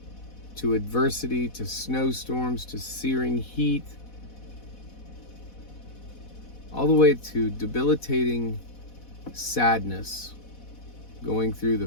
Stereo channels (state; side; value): late; right; 4.1 ms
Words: to adversity to snowstorms to searing heat, all the way to debilitating sadness, going through